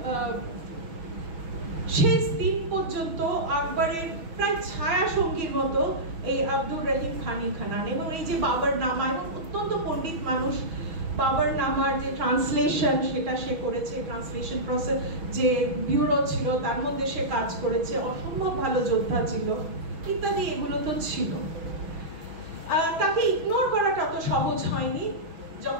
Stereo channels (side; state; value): left; late; 6.1 ms